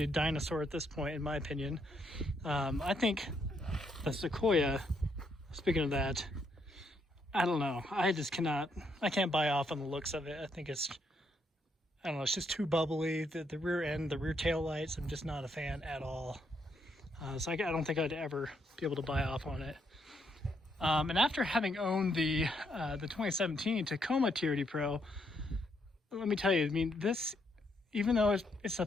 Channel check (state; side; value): normal; both; correlation 0.75